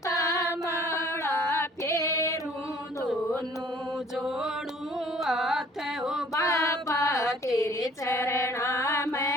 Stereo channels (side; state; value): both; normal; correlation 0.55